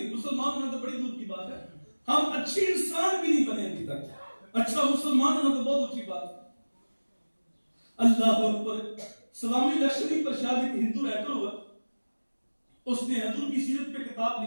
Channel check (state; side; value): inverted; both; correlation -1.00